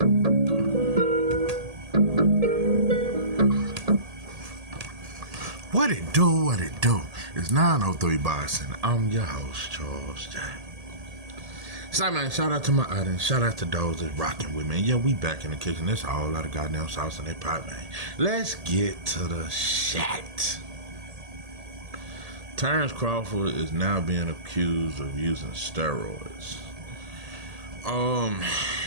What it do, what it do? It's 903 Boxing. I'm your host, Charles J. So, man, shout out to my audience. Shout out to those that's rocking with me. And yeah, we back in the kitchen. There's a whole lot of goddamn sauce in that pot, man. Let's get to the shit. Terrance Crawford is now being accused of using steroids.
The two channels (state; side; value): late; left; 1.8 ms